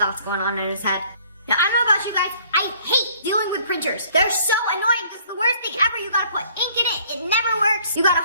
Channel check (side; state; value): both; inverted; correlation -0.57